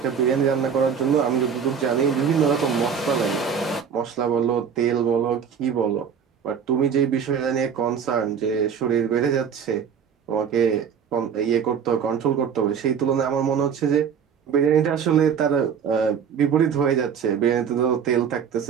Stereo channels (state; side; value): quieter; left; 7.3 dB